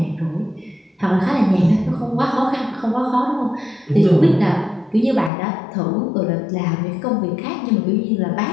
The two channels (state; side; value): drops out; right; at 5.3 s